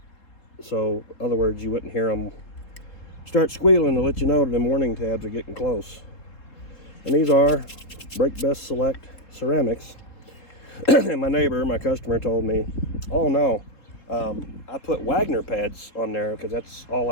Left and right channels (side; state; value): right; late; 3.7 ms